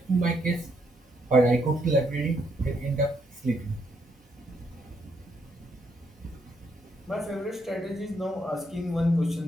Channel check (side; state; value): both; normal; correlation 0.75